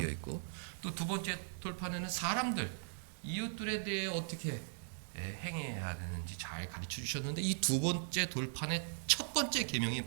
있고 또 두 번째 돌판에는 사람들, 이웃들에 대해 어떻게 행해야 되는지 잘 가르쳐 주셨는데 이 두 번째 돌판의 첫 번째 계명이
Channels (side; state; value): left; silent; digital silence